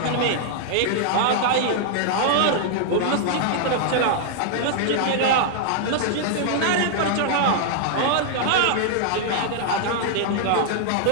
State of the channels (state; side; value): different; both; correlation -0.01